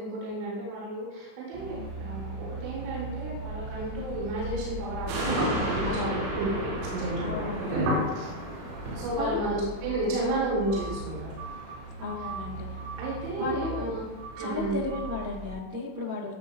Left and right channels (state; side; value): late; left; 31 ms